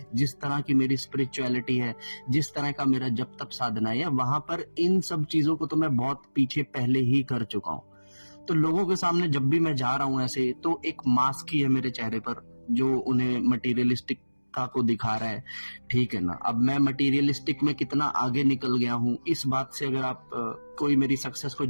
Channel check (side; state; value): both; inverted; correlation -1.00